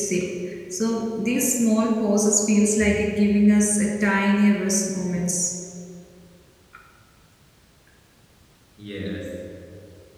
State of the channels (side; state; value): both; identical; correlation 1.00